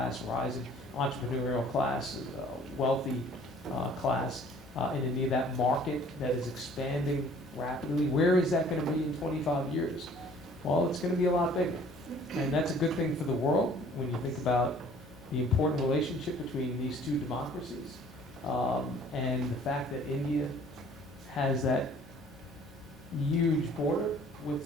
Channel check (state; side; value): normal; both; correlation 0.54